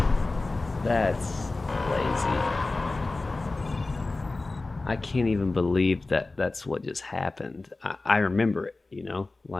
That's lazy. I can't even believe that that's what just happened. I remember it, you know?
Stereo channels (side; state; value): right; quieter; 3.3 dB